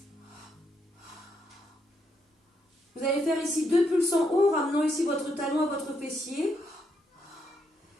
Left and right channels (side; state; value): both; normal; correlation 0.78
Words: Vous allez faire ici 2 pulses en haut, ramenant ici votre talon à votre fessier.